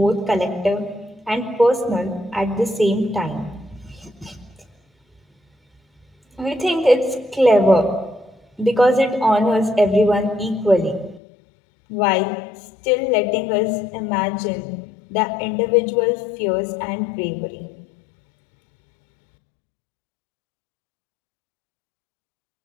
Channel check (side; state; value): right; drops out; at 11.2 s